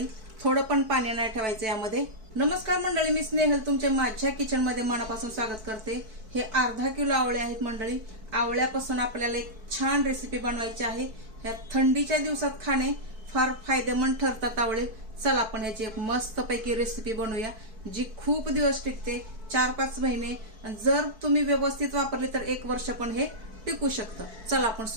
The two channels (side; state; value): left; late; 4.6 ms